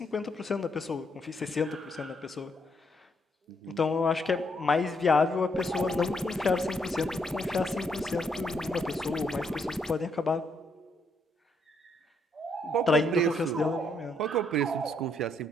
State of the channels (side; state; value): both; normal; correlation 0.74